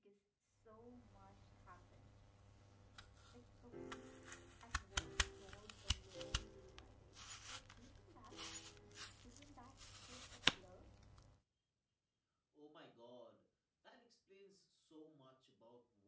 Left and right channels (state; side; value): identical; both; correlation 1.00